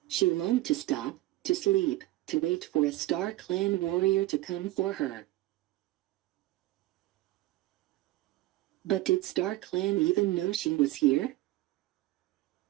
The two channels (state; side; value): quieter; left; 17.0 dB